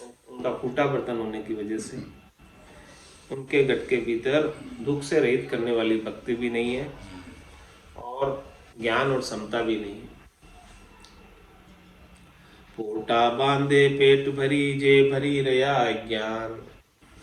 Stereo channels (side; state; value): both; identical; correlation 1.00